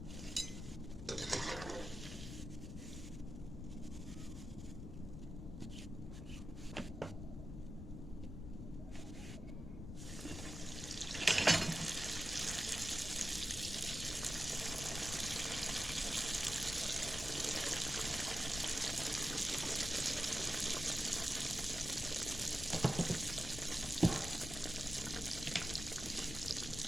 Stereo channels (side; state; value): left; noise; rumble, 8 dB below the sound